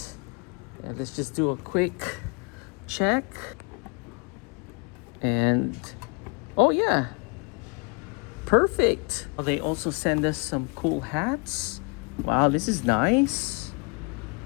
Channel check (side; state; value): right; quieter; 32.8 dB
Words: And let's just do a quick check. And oh yeah, perfect. They also send us some cool hats. Wow, this is nice.